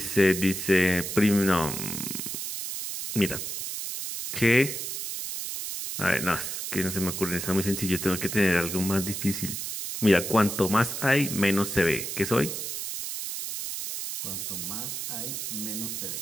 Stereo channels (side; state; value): right; noise; hiss, 5 dB below the sound